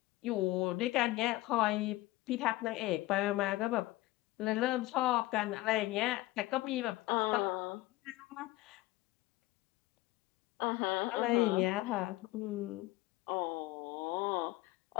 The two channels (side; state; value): right; quieter; 18.5 dB